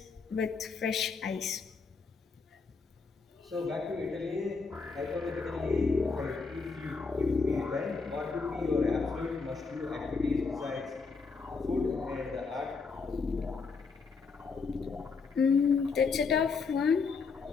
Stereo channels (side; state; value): right; quieter; 4.7 dB